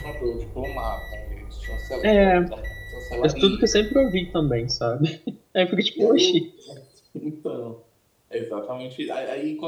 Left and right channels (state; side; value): identical; both; correlation 1.00